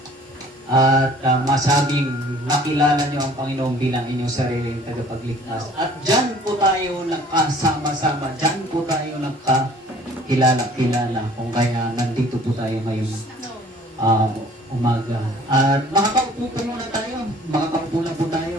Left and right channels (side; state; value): both; normal; correlation 0.52